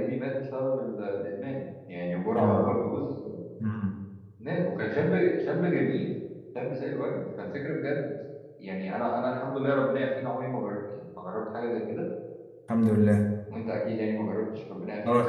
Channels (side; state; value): both; identical; correlation 1.00